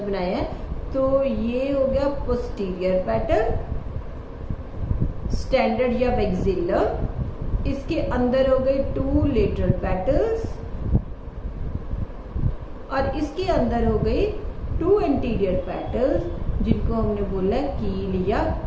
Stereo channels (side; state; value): both; identical; correlation 1.00